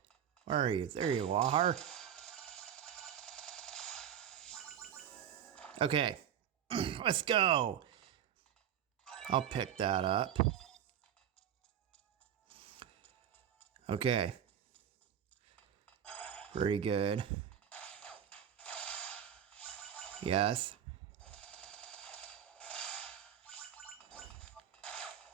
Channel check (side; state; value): left; quieter; 9.4 dB